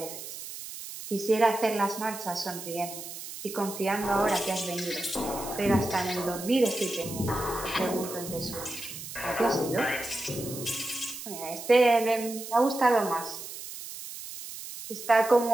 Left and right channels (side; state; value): right; noise; hiss, 10 dB below the sound